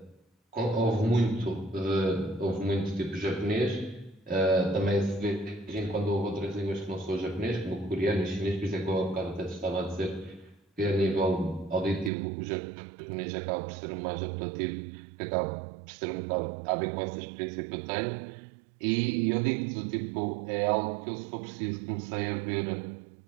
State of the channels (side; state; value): left; drops out; at 12.1 s